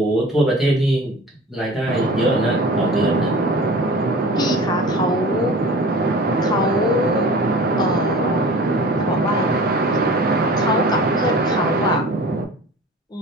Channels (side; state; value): both; normal; correlation 0.39